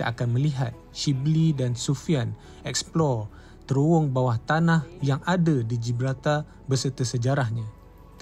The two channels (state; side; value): identical; both; correlation 1.00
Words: akan melihat Shibli dan Sufian explore terowong bawah tanah yang ada di Gibraltar beserta sejarahnya.